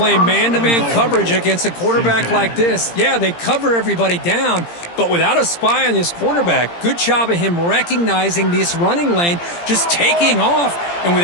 man-to-man coverage against a quarterback like this. Yeah, they cover everybody down, but without a spy on this quarterback, good job of him recognizing this running lane, just taking off, and with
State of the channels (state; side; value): late; right; 17 ms